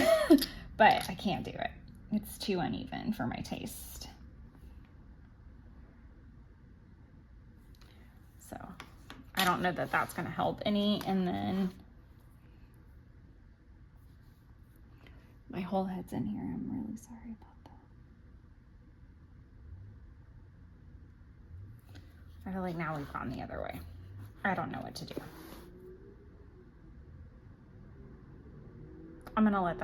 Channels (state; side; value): identical; both; correlation 1.00